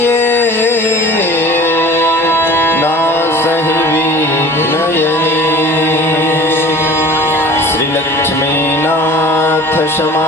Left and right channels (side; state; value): both; normal; correlation 0.43